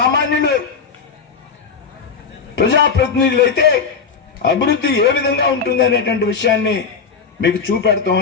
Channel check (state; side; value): quieter; right; 5.7 dB